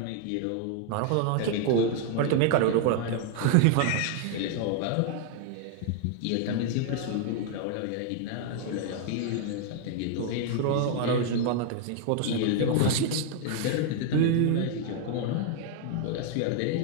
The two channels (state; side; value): different; both; correlation 0.00